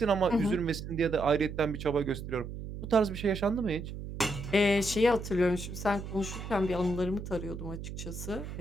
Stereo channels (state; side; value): noise; right; hum, 8 dB below the sound